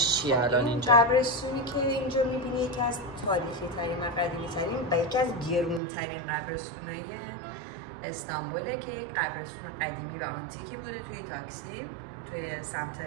چیه الان اینجا؟ قبرستونی که اینجا میبینی یکی از تاریخی ترین و قدیمی ترین و یکی از گرون ترین قبرستونای استانبوله که یک قبرستون قدیمی و آنتیکی بوده توی تاکسی، توی سمت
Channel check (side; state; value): left; drops out; at 5.8 s